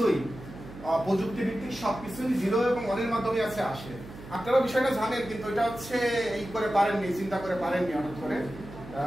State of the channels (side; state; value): right; noise; hum, 15 dB below the sound